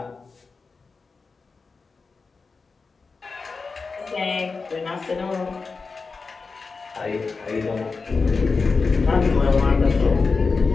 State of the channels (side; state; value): right; quieter; 4.4 dB